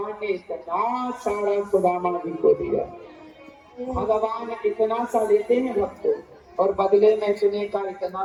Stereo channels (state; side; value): identical; both; correlation 1.00